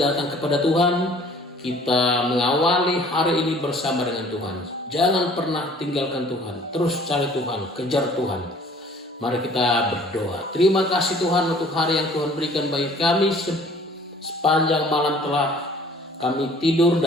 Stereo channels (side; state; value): both; normal; correlation 0.53